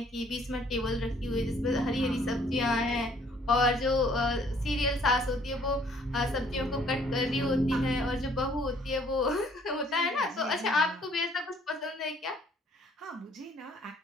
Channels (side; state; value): both; normal; correlation 0.61